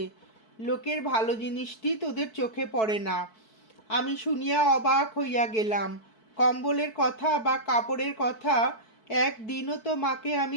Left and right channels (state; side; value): late; right; 4.6 ms